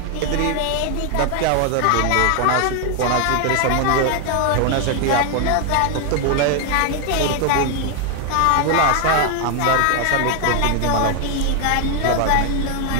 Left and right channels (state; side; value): different; both; correlation 0.00